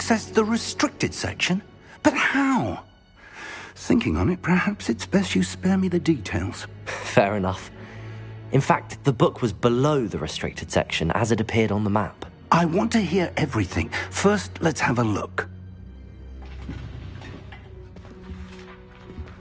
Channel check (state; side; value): identical; both; correlation 1.00